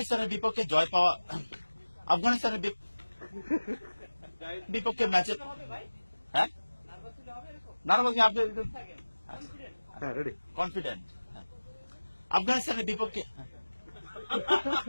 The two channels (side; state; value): both; inverted; correlation -1.00